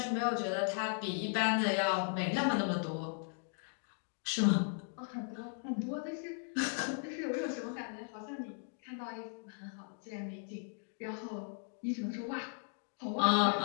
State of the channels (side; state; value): right; silent; 53 dB below the other